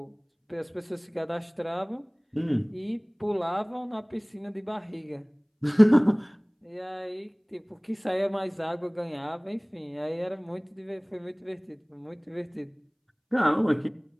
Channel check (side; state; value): both; identical; correlation 1.00